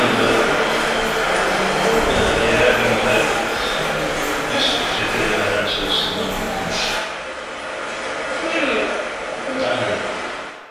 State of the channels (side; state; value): both; identical; correlation 1.00